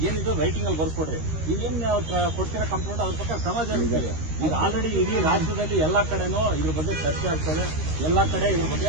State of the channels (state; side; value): late; left; 13 ms